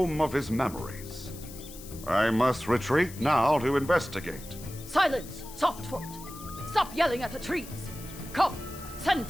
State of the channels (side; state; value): left; noise; hiss, 16 dB below the sound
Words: of his memories. I must retreat now to investigate. Silence, Softfoot! Stop yelling at the trees! Come, send